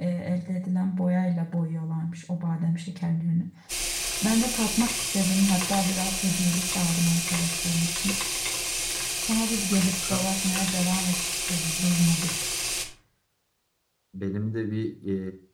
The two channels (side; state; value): both; identical; correlation 1.00